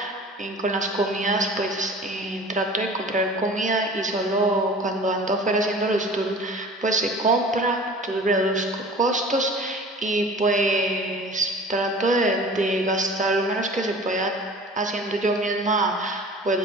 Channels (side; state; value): both; normal; correlation 0.42